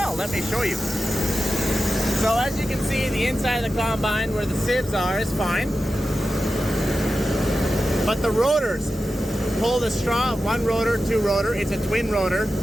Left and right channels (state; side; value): normal; both; correlation 0.92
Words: let me show you. So as you can see, the inside of the combine where the sieves are is fine. But the rotors pull the straw, 1 rotor, 2 rotor, it's a twin rotor.